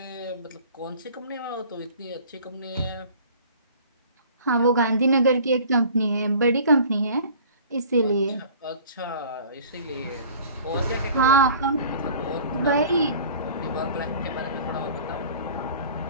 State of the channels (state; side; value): inverted; both; correlation -0.46